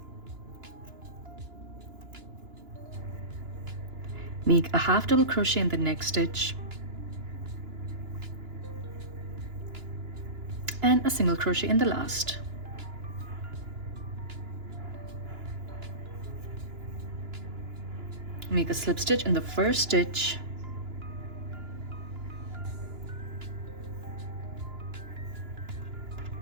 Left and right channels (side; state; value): left; late; 2.9 ms